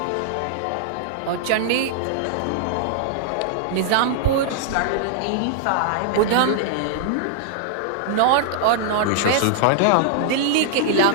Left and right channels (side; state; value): both; different; correlation -0.01